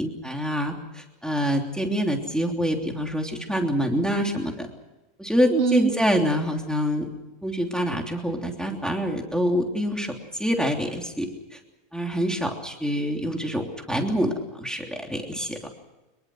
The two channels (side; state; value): both; normal; correlation 0.65